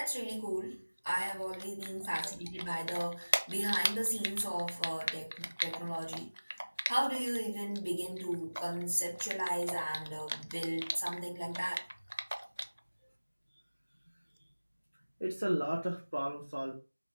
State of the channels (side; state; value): both; inverted; correlation -1.00